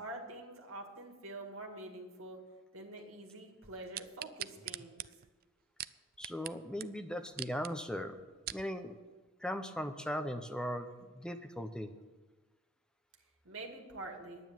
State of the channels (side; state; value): both; normal; correlation 0.60